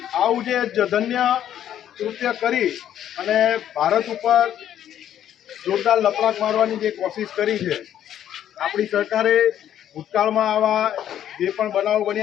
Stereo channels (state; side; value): quieter; right; 10.7 dB